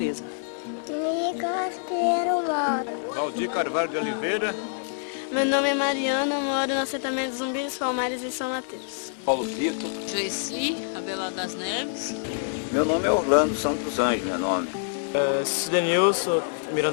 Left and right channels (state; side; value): silent; right; 56 dB below the other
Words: Nicolas Pinheiro mora. Valdir Carvalho de Oliveira. Meu nome é Mariana, moro no assentamento Zumbi dos Palmares em São Mateus. Paulo Tito. Joeci, Abelardo das Neves. Meu nome é Orlando Santos Anjos, meu nome. Cidenilson